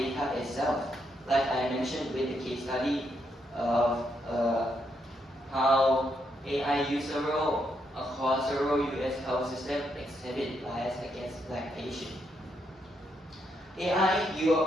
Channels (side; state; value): both; normal; correlation 0.78